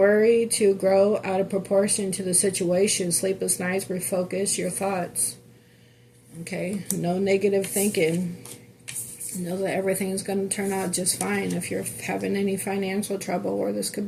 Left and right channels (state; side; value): identical; both; correlation 1.00